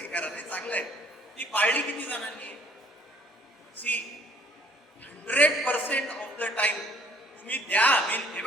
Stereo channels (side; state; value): both; normal; correlation 0.59